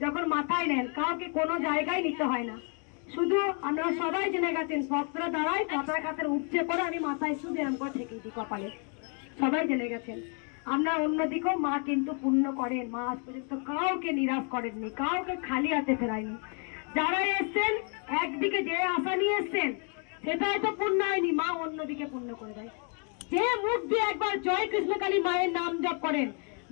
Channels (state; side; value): quieter; right; 40.0 dB